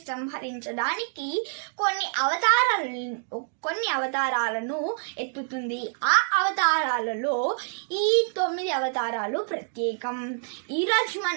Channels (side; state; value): left; silent; digital silence